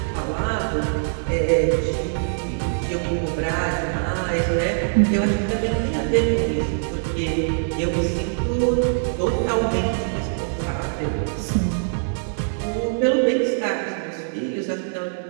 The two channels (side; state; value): left; silent; digital silence